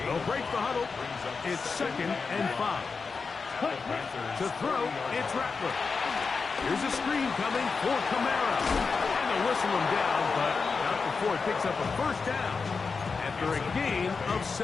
They'll break the huddle. It's second and 5. To throw, it's Rattler. Here's a screen coming for Kamara. And they'll whistle him down, but not before he picks up a first down after a gain of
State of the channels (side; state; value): right; quieter; 4.8 dB